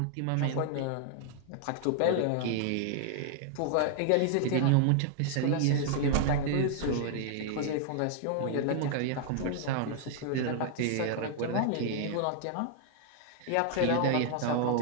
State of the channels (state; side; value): different; both; correlation 0.00